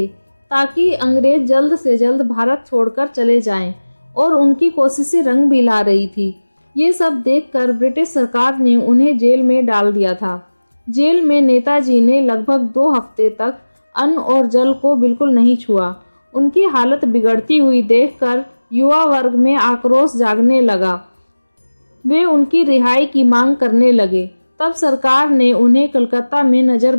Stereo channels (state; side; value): inverted; both; correlation -1.00